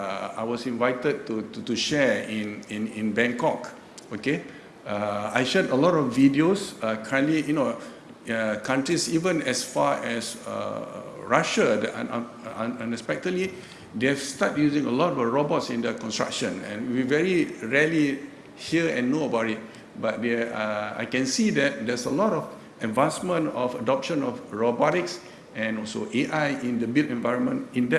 was invited to share in Bangkok, okay, I shared a lot of videos. Currently, countries even as far as Russia, unexpectedly, they've started using a lot of robots in the construction, and we very rarely hear and know about it. But I can see that there's a lot of advancement of adoption of robotics and also AI in the built environment in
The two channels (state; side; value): identical; both; correlation 1.00